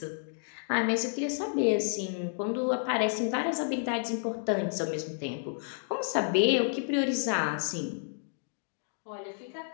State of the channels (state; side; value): silent; right; digital silence